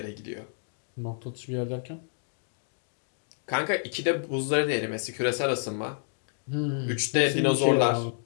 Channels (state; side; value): silent; right; digital silence